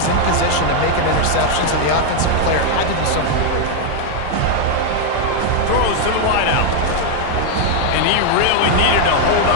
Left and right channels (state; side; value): different; both; correlation 0.00